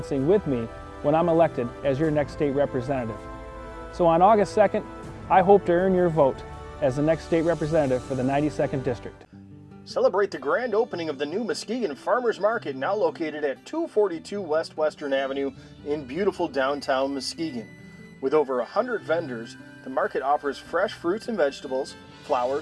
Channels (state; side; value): identical; both; correlation 1.00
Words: with me when I'm elected as your next state representative. So on August 2nd, I hope to earn your vote as the next state representative for the 92nd District. Celebrate the grand opening of the new Muskegon Farmers Market, now located at 242 West Western Avenue in beautiful downtown Muskegon. With over 100 vendors, the market offers fresh fruits and vegetables,